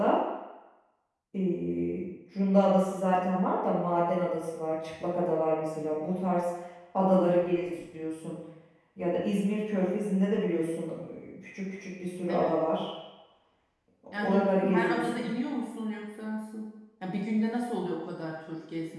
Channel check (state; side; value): identical; both; correlation 1.00